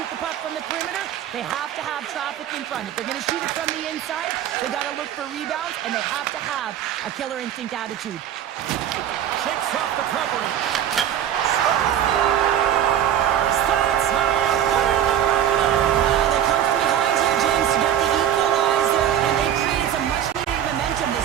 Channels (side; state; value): left; quieter; 10.4 dB